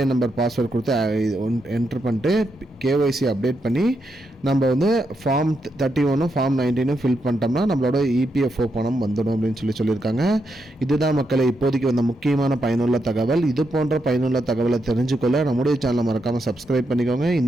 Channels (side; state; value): both; normal; correlation 0.82